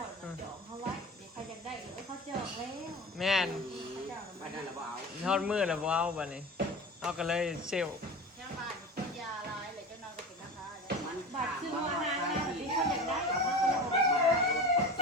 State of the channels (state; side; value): normal; both; correlation 0.32